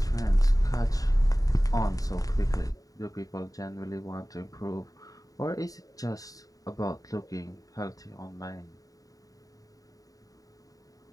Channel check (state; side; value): late; right; 0.17 ms